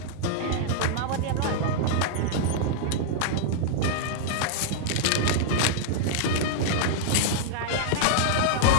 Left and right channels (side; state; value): both; different; correlation -0.01